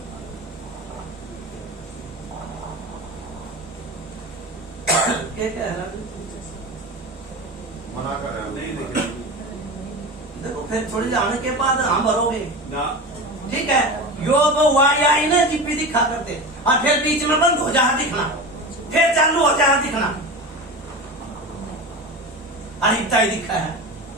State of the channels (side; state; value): both; normal; correlation 0.28